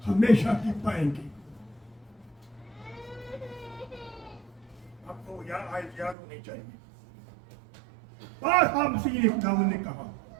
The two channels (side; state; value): left; drops out; at 6.2 s